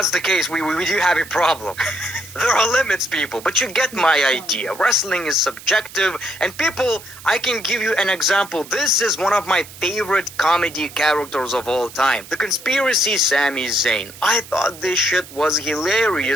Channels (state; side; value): noise; right; hiss, 17 dB below the sound